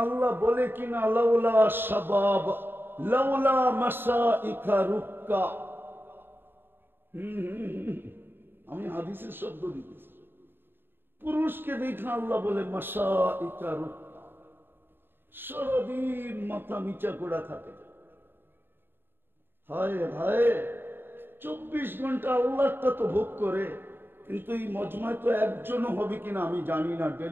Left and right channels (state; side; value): late; left; 0.10 ms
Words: আল্লাহ বলে কিনা লাউলা শাবাব লাউলা মাসাইকা রুক্কা। আমি হাদিসের শব্দ দিতেছি। পুরুষকে দেখা আল্লাহ বলে মাসাইকা রুক্কা, সারাদিন মাথা নিচা করা থাকে। হায় হায়, 24 ঘন্টা আল্লাহটা তো ভোগ করে, কিন্তু এই মজমায় তো একজনও হবে কিনা আমি জানি না